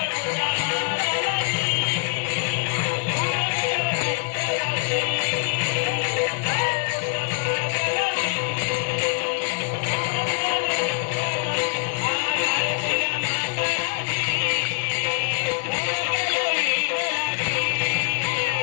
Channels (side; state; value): right; quieter; 38.6 dB